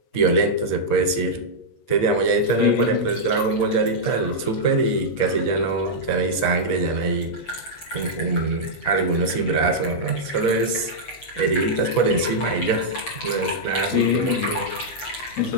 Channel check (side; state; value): right; late; 7.4 ms